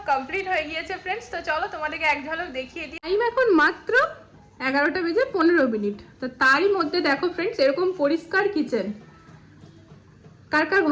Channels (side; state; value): both; identical; correlation 1.00